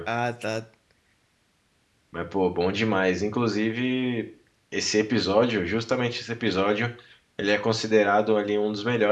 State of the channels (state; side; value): identical; both; correlation 1.00